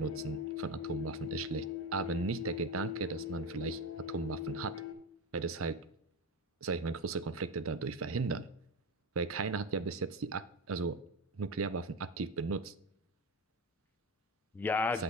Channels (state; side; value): normal; both; correlation 0.20